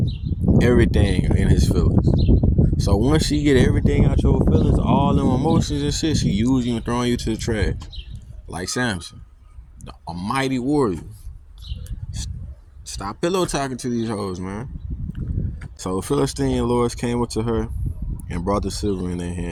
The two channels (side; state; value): both; identical; correlation 1.00